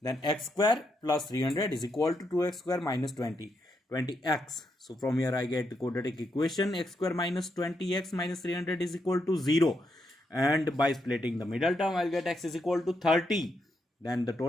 x square plus 300 is equal to 2x square minus 20x. So from here I get the quadratic equation x square minus 20x minus 300 is equal to 0. And by splitting the middle term, I'll get x is equal to 30. Then the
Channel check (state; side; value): normal; both; correlation 0.81